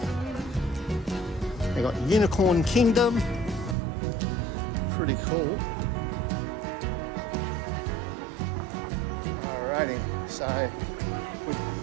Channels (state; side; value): drops out; left; at 3.8 s